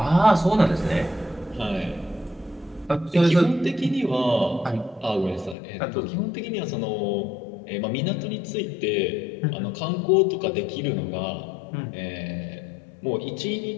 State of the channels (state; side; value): drops out; right; at 5.6 s